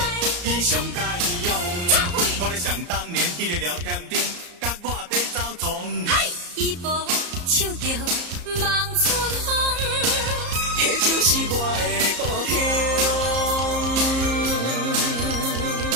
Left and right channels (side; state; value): left; late; 34 ms